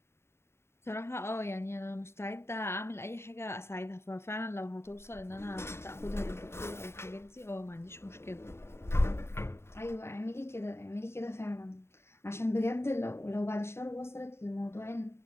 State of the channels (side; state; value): right; late; 0.12 ms